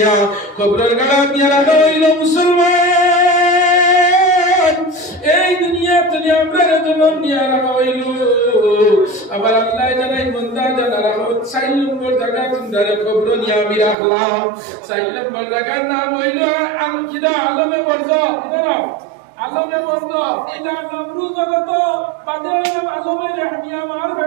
কবরের গাড়া নিয়ে রাখা হইল মুসলমান। এই দুনিয়া তনে আমরা জন্ম নিয়ে রাখা হইল। আবার আল্লাহ জানাই বান্দা জানা রাখো 4 নম্বর জায়গা তোমরা কবর নিয়ে আমি রাখলাম। 4 নম্বর জায়গার নাম হইল আলমে বরজ। কিনা নাম? আলমে বরজ। এটার নাম রু জগত, বাদে হইলাম আলমে রেহমিয়া মার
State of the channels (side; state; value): left; drops out; at 14.0 s